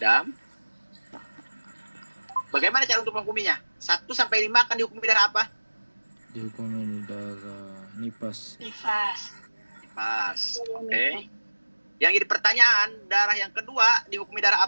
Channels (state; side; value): inverted; both; correlation -1.00